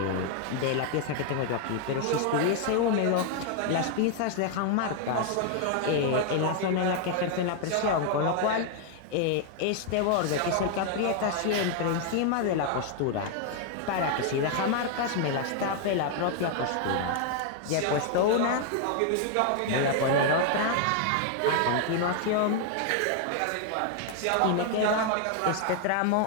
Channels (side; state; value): both; different; correlation 0.00